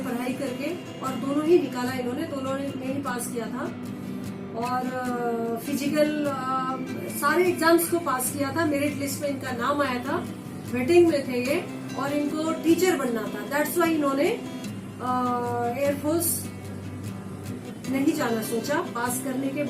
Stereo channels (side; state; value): both; identical; correlation 1.00